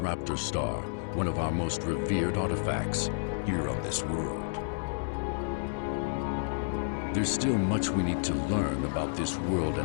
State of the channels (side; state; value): right; silent; digital silence